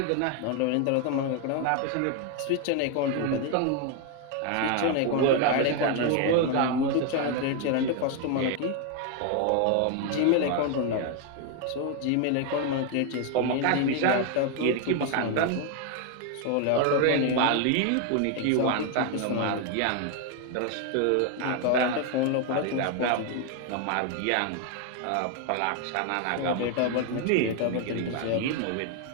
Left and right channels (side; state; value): both; different; correlation 0.01